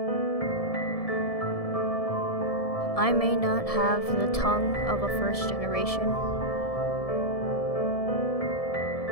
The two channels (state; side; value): late; right; 1.7 ms